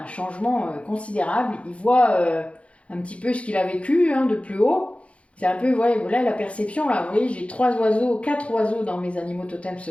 changement considérable, il voit un petit peu ce qu'il a vécu, hein, de plus haut. C'est un peu, ouais, voilà la perception là, vous voyez, j'ai 4 oiseaux dans mes animaux totems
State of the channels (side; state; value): right; late; 0.062 ms